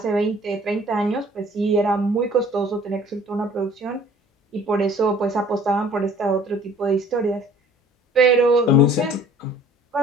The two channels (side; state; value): both; normal; correlation 0.52